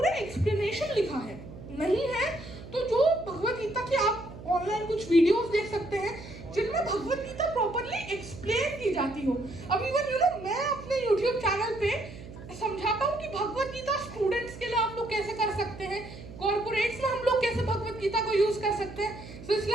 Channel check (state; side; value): noise; right; hum, 14 dB below the sound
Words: एक्सप्लेनेशन लिखा है। नहीं है तो जो भगवत गीता की आप ऑनलाइन कुछ वीडियोस देख सकते हैं जिनमें भगवत गीता प्रॉपर्ली एक्सप्लेन की जाती हो। अब इवन मैं अपने YouTube चैनल पे